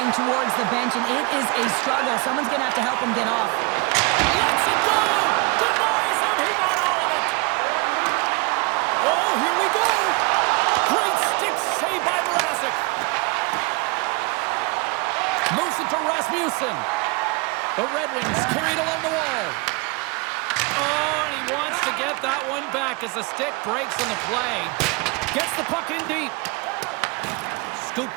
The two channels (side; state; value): left; quieter; 27.6 dB